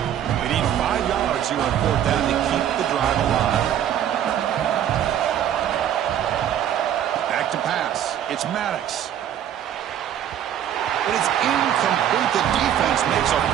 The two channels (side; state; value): left; quieter; 10.3 dB